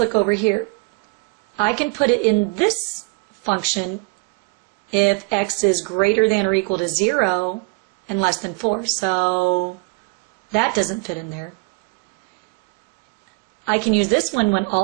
over here. I can put it in this function if x is greater than or equal to 0 and less than 4. So that doesn't fit in there. I can use this one when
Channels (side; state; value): left; quieter; 31.5 dB